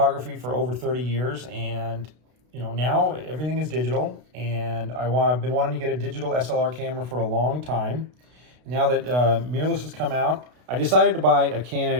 for over 30 years, and now everything is digital, and I've been wanting to get a digital SLR camera for a long time. Now that mirrorless has come out, I decided to buy a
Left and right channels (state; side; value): late; left; 32 ms